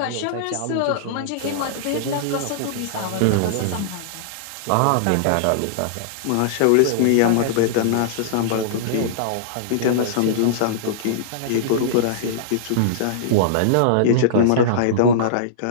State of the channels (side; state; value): both; different; correlation -0.02